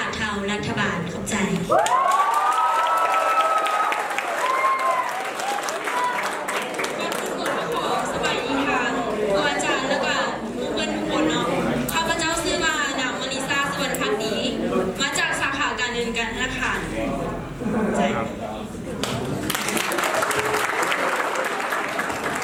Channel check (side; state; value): both; identical; correlation 1.00